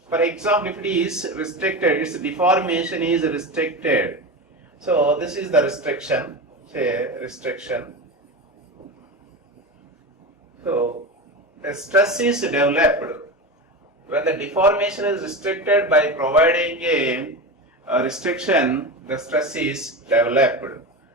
for example, if it is restricted, its deformation is restricted. So this is the restriction, say restriction. So a stress is developed when the deformation is restricted. By providing a restriction, the stress is developed.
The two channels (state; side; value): normal; both; correlation 0.23